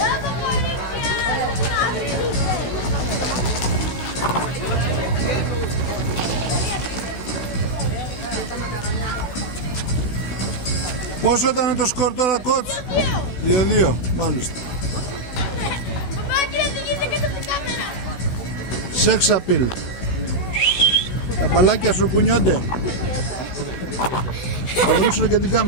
Πόσο ήταν το σκορ τώρα, κότς? 2-2, μάλιστα. Σεξ απειλ. Τα μπαλάκια σου κουνιόνται. Θα δείξουν και την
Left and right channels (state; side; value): late; right; 16 ms